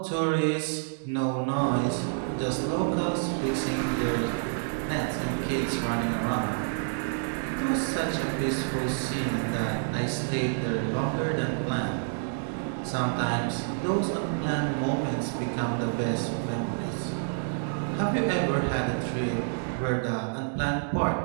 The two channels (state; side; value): silent; left; digital silence